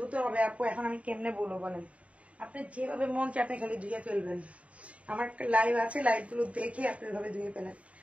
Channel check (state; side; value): late; left; 0.065 ms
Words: হবে আপু এখন আমি কেমনে বলবো বলেন? আপনি যেভাবে মন চায় আপনি খালি ধুয়ে ফেলবেন। আমার লাইভ আছে, লাইভগুলো দেখে আপনি এভাবে ধুয়ে ফেলেন।